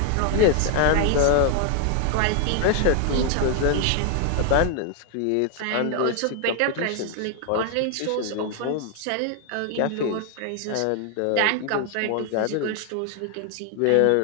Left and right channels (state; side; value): different; both; correlation 0.00